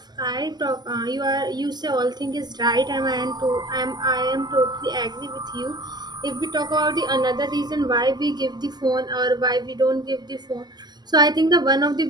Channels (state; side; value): late; left; 0.20 ms